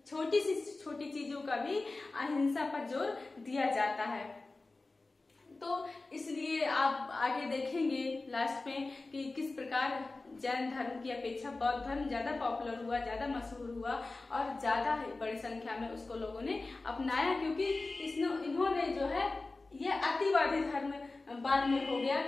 छोटी सी छोटी चीजों का भी अहिंसा पर जोर दिया जाता है। तो इसलिए आप आगे देखेंगे लास्ट में कि किस प्रकार जैन धर्म की अपेक्षा बौद्ध धर्म ज्यादा पॉपुलर हुआ, ज्यादा मशहूर हुआ और ज्यादा बड़ी संख्या में उसको लोगों ने अपनाया, क्योंकि इन्होंने जो है यह अतिवादी धर्म बाद में हो गया,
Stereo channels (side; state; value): right; quieter; 3.4 dB